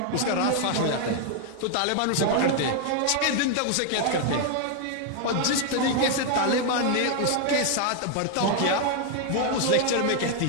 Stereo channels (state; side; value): different; both; correlation 0.00